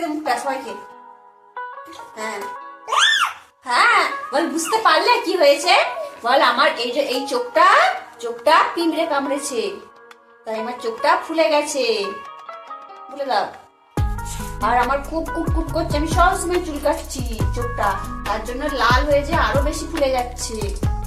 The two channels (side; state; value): both; identical; correlation 1.00